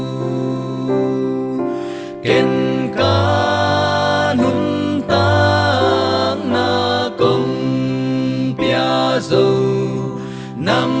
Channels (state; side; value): identical; both; correlation 1.00